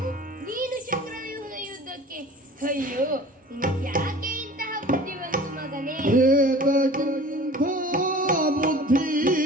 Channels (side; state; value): both; normal; correlation 0.43